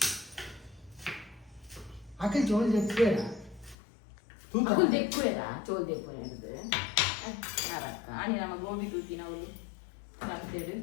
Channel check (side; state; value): right; drops out; at 3.8 s